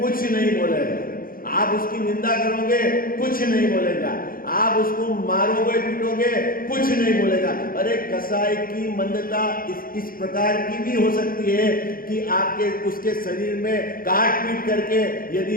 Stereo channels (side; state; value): right; late; 0.42 ms